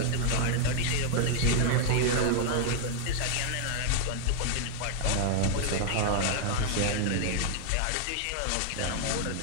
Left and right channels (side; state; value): both; different; correlation 0.00